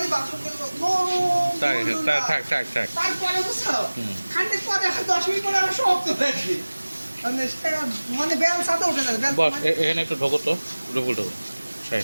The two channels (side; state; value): both; inverted; correlation -1.00